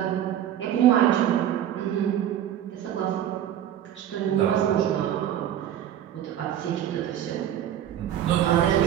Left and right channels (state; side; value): quieter; left; 10.8 dB